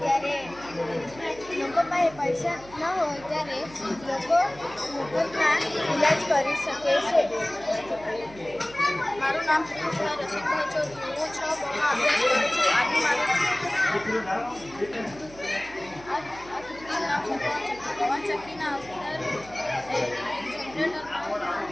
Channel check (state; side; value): noise; right; hum, 20 dB below the sound